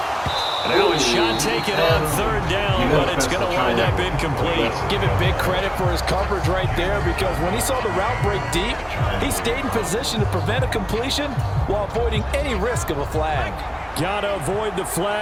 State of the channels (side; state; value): both; identical; correlation 1.00